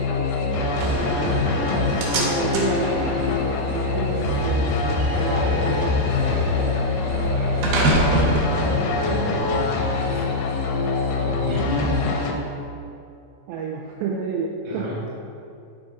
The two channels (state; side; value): normal; both; correlation -0.07